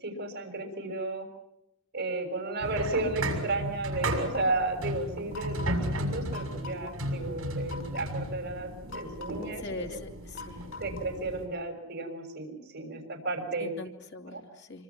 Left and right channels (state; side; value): normal; both; correlation -0.06